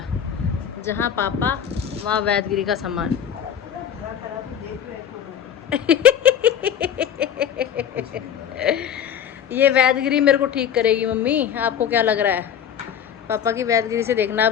जहाँ पापा वहाँ वैदगिरी का सामान। ये वैदगिरी मेरे को ठीक करेगी मम्मी, आपको क्या लग रहा है? पापा की वैदगिरी से देखना।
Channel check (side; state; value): right; quieter; 8.8 dB